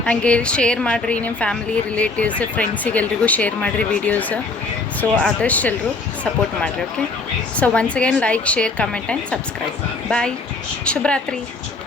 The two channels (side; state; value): right; quieter; 3.6 dB